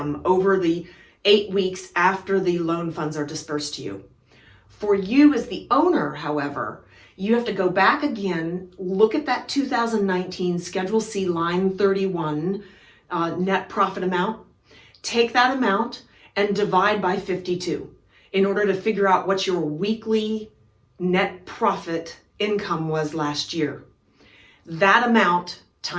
over the 8 weeks after the loan funds are dispersed to you. For you as the owner, however, you have to go back again, look at that 2019 Schedule C line 31 net profit amount, take that amount and divide by 52 in order to figure out what your weekly net profit income was last year. That amount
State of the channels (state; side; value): identical; both; correlation 1.00